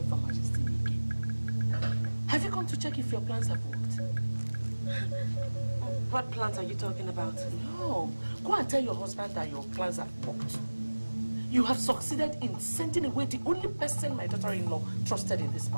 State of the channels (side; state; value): both; inverted; correlation -1.00